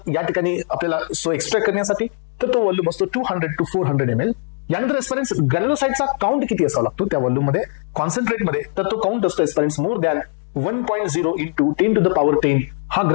या ठिकाणी आपल्याला सो एक्सट्रॅक्ट करण्यासाठी तर तो व्हॉल्यूम असतो 200 to 400 ml. यानंतर एस्पेरेंट्स ग्रॅन्युलोसाइटचा काउंट किती असावा लागतो त्या व्हॉल्यूम मध्ये कॉन्सन्ट्रेट मध्ये तर तो काउंट असतो aspirants more than 1.0 into 10 to the power 10 हा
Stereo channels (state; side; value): silent; right; 55 dB below the other